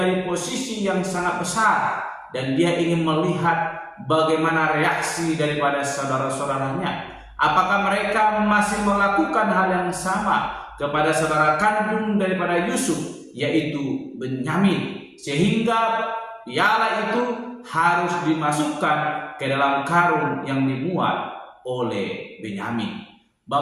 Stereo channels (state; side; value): identical; both; correlation 1.00